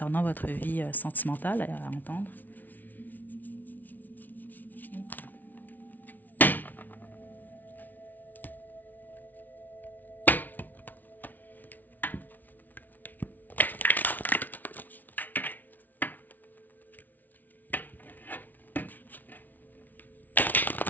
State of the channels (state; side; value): late; right; 0.082 ms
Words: votre vie sentimentale à entendre.